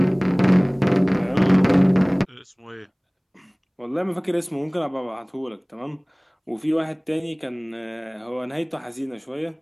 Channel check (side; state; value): both; identical; correlation 1.00